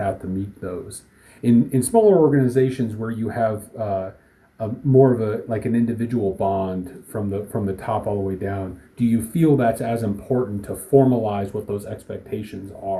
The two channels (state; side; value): identical; both; correlation 1.00